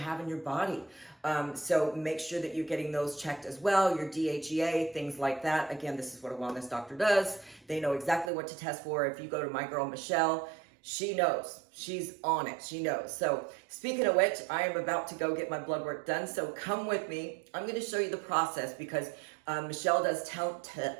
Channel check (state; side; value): drops out; left; at 8.3 s